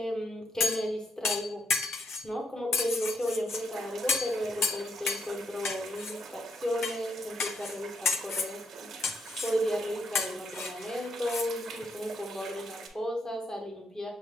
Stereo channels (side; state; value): both; normal; correlation 0.77